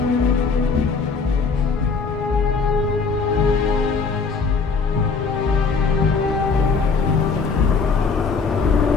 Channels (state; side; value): quieter; right; 4.9 dB